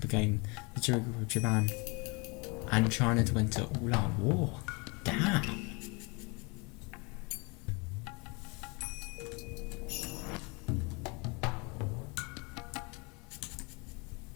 the trigger of Japan and China to enter all-out war. Damn!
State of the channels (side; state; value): right; quieter; 29.6 dB